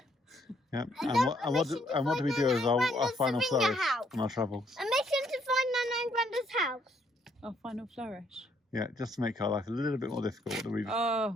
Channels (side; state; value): both; normal; correlation 0.70